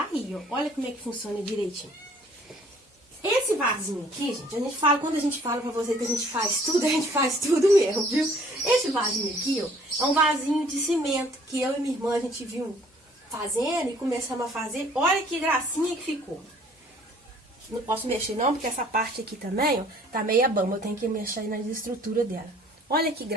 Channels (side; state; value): both; normal; correlation 0.57